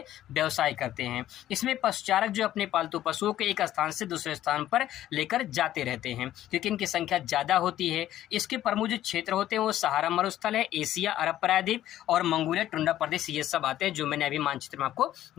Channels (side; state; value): right; quieter; 12.9 dB